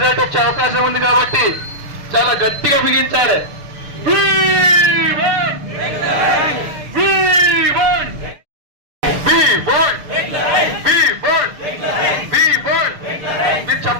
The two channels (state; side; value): late; left; 6.6 ms